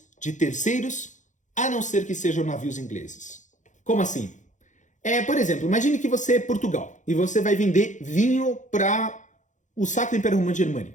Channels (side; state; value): right; late; 0.36 ms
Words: de terceiros, a não ser que sejam navios ingleses. Como assim? Por exemplo, imagine que você é Portugal e você vai vender vinho para o Sacro Império Romano